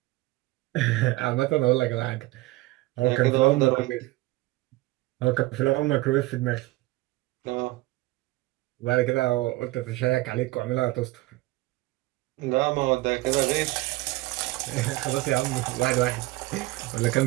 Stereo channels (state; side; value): quieter; left; 19.8 dB